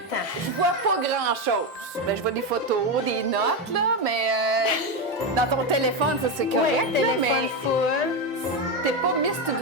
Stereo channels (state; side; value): normal; both; correlation 0.11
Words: Je vois pas grand-chose. Ben, je vois des photos, des notes, là, mais dans ton téléphone, ça, c'est correct, Oui, là, mais téléphone full. t'es pas Miss